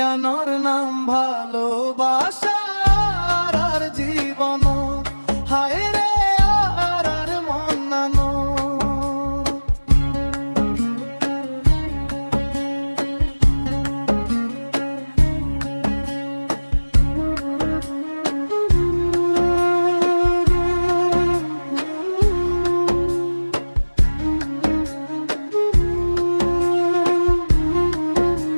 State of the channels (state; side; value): inverted; both; correlation -1.00